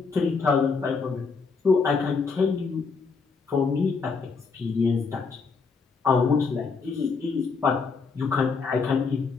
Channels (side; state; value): right; quieter; 4.8 dB